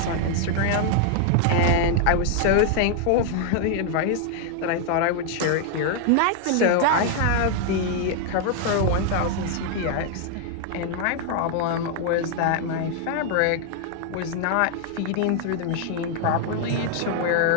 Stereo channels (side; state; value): both; different; correlation 0.00